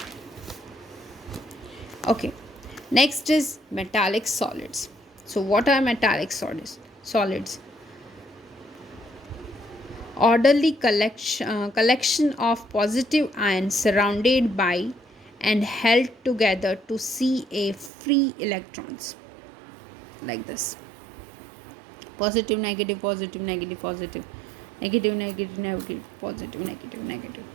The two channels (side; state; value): left; drops out; at 17.9 s